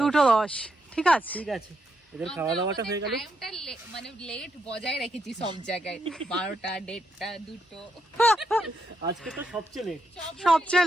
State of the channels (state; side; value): normal; both; correlation 0.80